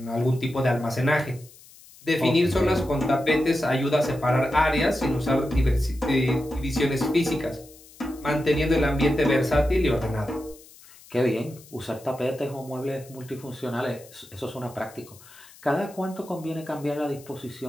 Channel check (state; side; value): noise; left; hiss, 23 dB below the sound